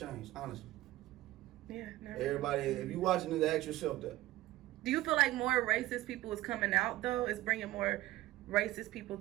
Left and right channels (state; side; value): quieter; left; 16.6 dB